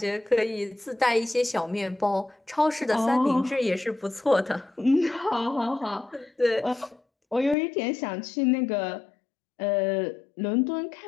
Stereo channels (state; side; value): drops out; right; at 7.6 s